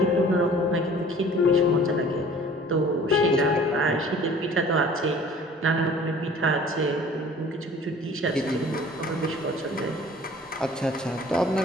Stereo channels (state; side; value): normal; both; correlation 0.49